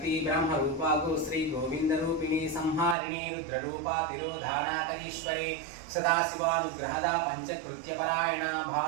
ब्रह्मरूपा गो श्री गोविंदरूपिणी संहारिणी रुद्ररूपा तिरोधानाकरीश्वरी सदाशिवानुग्रहदा पंचकृत्यपरायणा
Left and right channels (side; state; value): left; drops out; at 3.0 s